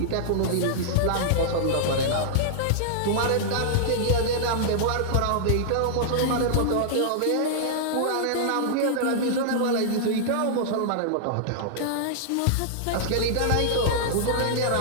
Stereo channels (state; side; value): different; both; correlation -0.01